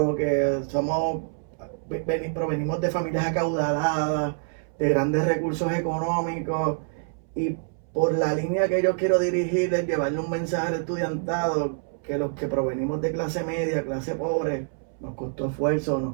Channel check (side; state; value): left; silent; 61 dB below the other